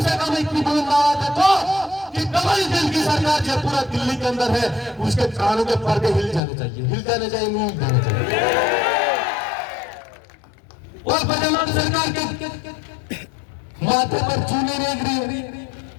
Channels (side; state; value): right; drops out; at 6.4 s